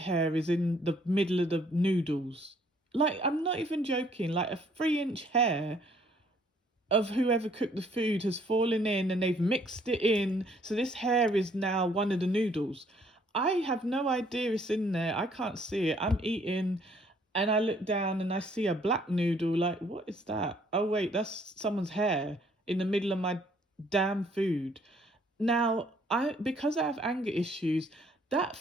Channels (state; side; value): normal; both; correlation 0.63